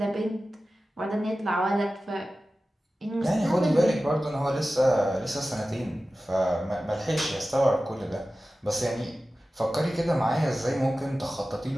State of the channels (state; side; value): normal; both; correlation 0.95